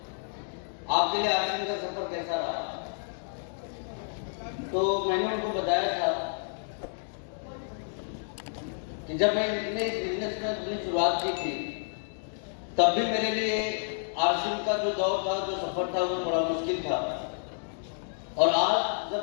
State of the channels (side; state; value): right; silent; digital silence